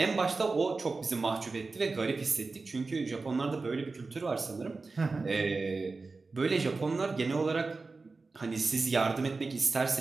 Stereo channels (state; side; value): quieter; left; 3.9 dB